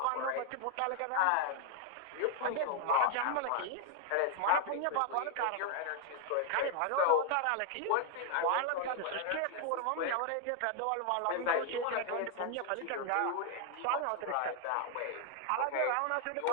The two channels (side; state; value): both; different; correlation 0.00